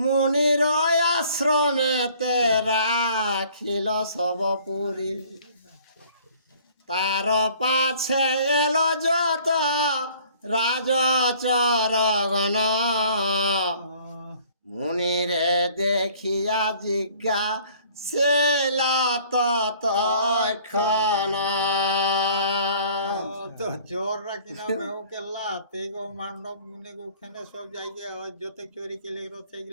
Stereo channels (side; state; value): both; inverted; correlation -0.54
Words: আশ্রমেতে রাখিল সব পুরী তার পাছে এলো যত রাজচরগণ মুনিরে দেখিয়া জিজ্ঞা সেলা ততক্ষণ তো চোররা কিনা মেহুকে লাতে গো মান্ডব মুনি ওখানে সব জায়গায় যত চোরি কেলে